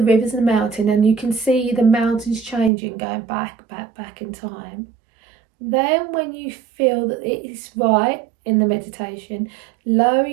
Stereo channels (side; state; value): left; drops out; at 2.7 s